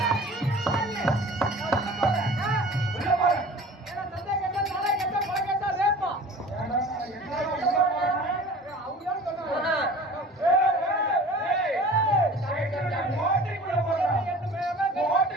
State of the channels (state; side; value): normal; both; correlation 0.42